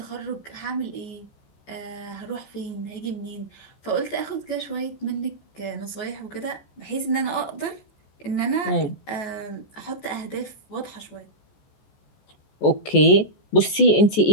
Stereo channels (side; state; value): right; late; 14 ms